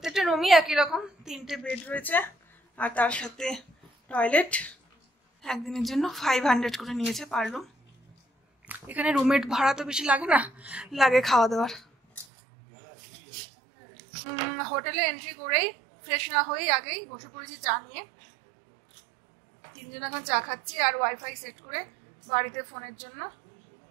রুমই একই রকম, 3টে বেড রয়েছে, আর তার সাথে টয়লেট। একদিনের জন্য 500 করে নিয়েছে পার রুম। এখানে রুমের ভাড়া তো বেশি লাগে না, লাগে খাওয়া দাওয়ার। হোটেলে এন্ট্রি করেই ফ্রেশ না হয়েই আগেই বসে পড়েছি চা নিয়ে। 3 জন এখন চা খাচ্ছি আর ওয়াইফাই সেট করে বাড়িতে ফোনের জন্য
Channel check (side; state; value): left; drops out; at 12.2 s